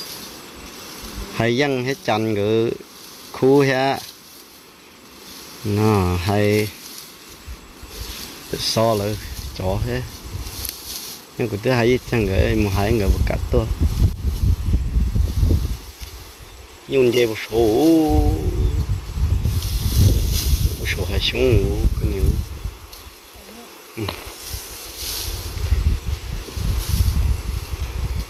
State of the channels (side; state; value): both; identical; correlation 1.00